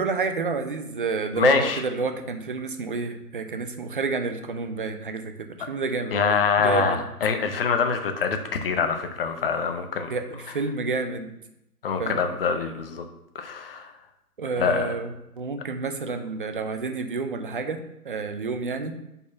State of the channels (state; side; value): normal; both; correlation 0.16